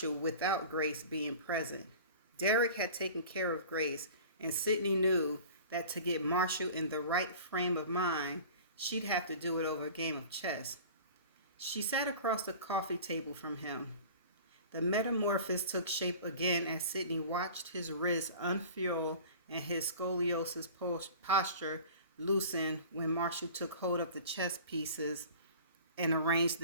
without Grace being present. Derek had taken care of Grace, and Sydney knew that to get Marshall in the right frame of mind, she'd have to do it over a game of chess. She sat across the coffee table from him. The metamorphosis took shape again as Sydney watched his wrists unfurl and his scoliosis posture loosen when Marshall took hold of the chess pieces and arranged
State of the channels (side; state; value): both; inverted; correlation -0.41